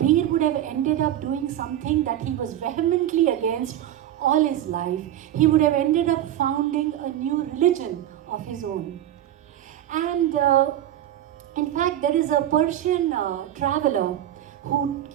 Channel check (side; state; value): left; quieter; 12.1 dB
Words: would have ended up doing something that he was vehemently against all his life. He would have ended up founding a new religion of his own. And in fact, there is a Persian traveler who